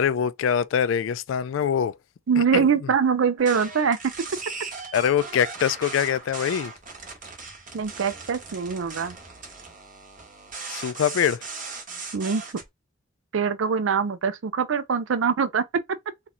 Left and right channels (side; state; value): both; normal; correlation -0.09